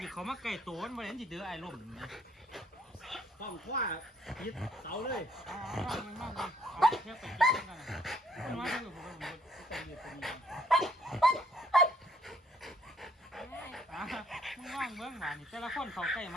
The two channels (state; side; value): normal; both; correlation 0.65